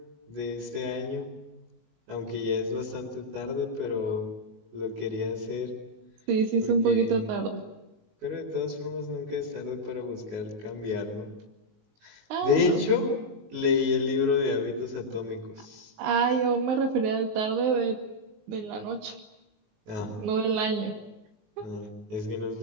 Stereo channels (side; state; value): left; late; 19 ms